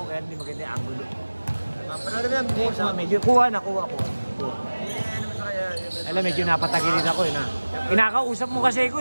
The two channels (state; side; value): inverted; both; correlation -1.00